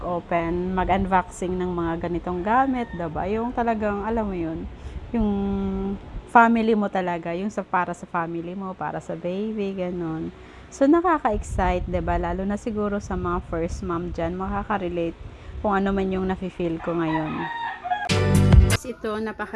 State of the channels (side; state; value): both; identical; correlation 1.00